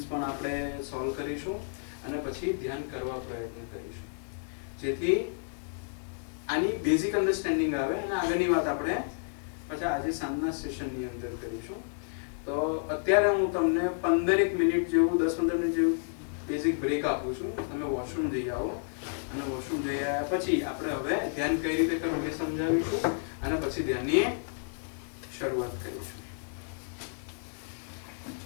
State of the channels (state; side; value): silent; right; digital silence